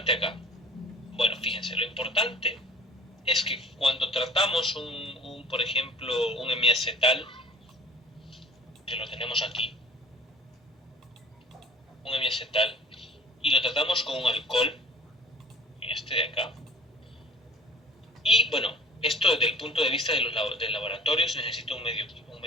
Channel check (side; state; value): both; normal; correlation 0.46